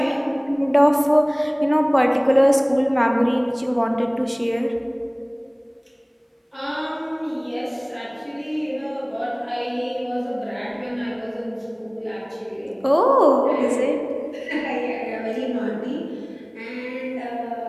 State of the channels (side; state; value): both; identical; correlation 1.00